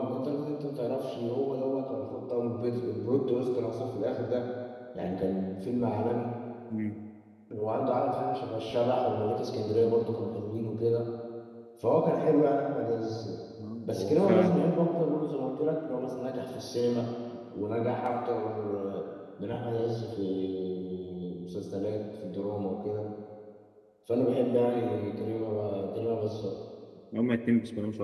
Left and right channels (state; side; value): identical; both; correlation 1.00